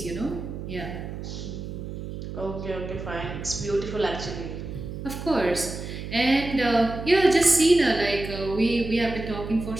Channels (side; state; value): right; noise; hum, 8 dB below the sound